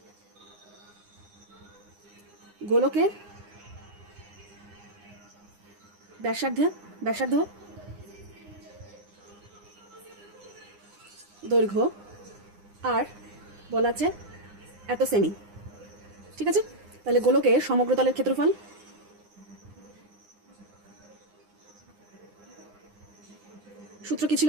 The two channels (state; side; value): late; left; 9.8 ms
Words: গোলকের ব্যাসার্ধ দৈর্ঘ্য আর বলা আছে এত সেমি, ঠিক আছে। তাহলে গোলকের সমগ্র তলের ক্ষেত্রফল, সূত্র কি ছিল,